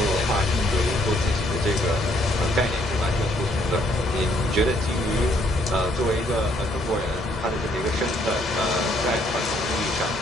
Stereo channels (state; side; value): normal; both; correlation 0.68